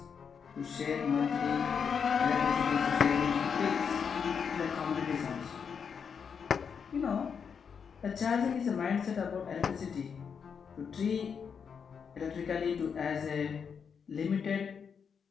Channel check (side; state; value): right; quieter; 6.6 dB